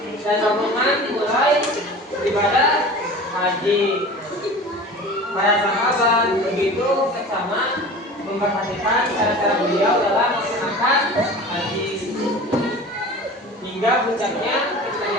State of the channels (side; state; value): both; normal; correlation 0.38